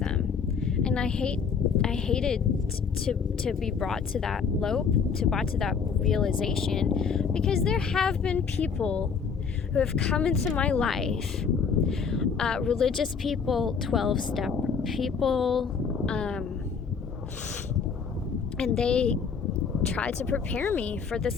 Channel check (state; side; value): quieter; right; 6.0 dB